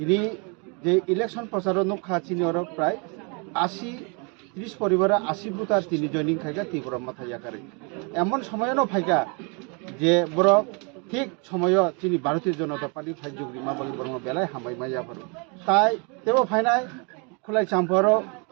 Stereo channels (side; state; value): left; quieter; 34.0 dB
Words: যে ইলেকশন প্রচার নখা চিনি ওর প্রায় ৩০ পরিবারে ৮০ বুথ আর তিনি জয়নিং খাইকা ত্রিপুরা মাথায় আকারে এমন সময়ও ফাইকা যে বড় ঠিক সময় তিনি ভারতীয় জনতা পার্টি ফাইজুগরি মাবলি বর্ম বেলায় হামাই মাইয়া পারো তাই তেও ফাইনাই খুলাই চাম্পার